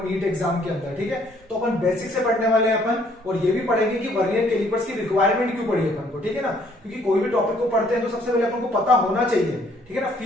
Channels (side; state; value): both; normal; correlation 0.64